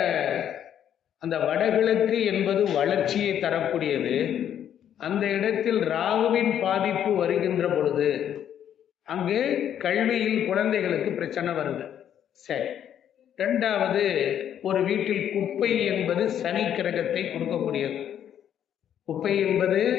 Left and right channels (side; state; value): right; quieter; 9.8 dB